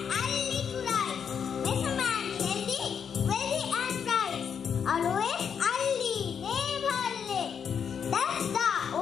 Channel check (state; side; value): quieter; right; 7.4 dB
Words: I lick rice. Make a man healthy, wealthy and bright. Always early, never late. That's the